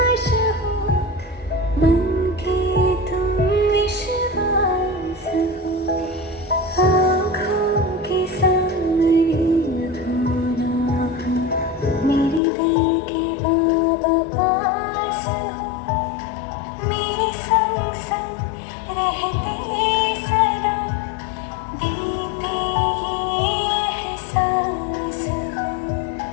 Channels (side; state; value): right; drops out; at 12.4 s